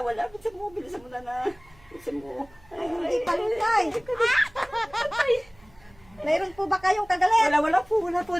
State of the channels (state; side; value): noise; right; hum, 28 dB below the sound